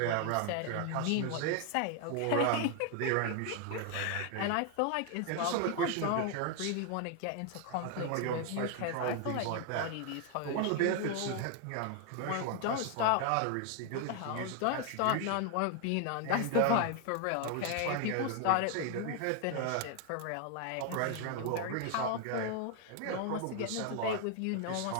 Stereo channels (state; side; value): different; both; correlation 0.00